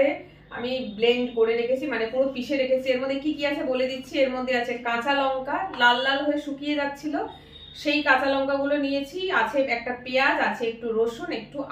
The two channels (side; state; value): both; identical; correlation 1.00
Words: আমি ব্লেন্ড করে রেখেছি, মানে পুরো পিষে রেখেছি। এর মধ্যে কি কি আছে বলে দিচ্ছি। এর মধ্যে আছে কাঁচা লঙ্কা, লাল লাল হয়ে শুকিয়ে যাচ্ছিল, সেই কাঁচা লঙ্কা গুলো নিয়েছি। আছে একটা পেঁয়াজ, আছে একটু রসুন, একটু